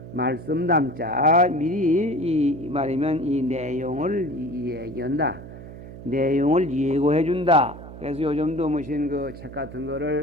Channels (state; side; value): noise; right; hum, 14 dB below the sound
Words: 말씀 담자 미리 이 말이면 이 내용을 얘기한다. 내용을 예고해 준다. 그래서 요즘도 무슨 그 책 같은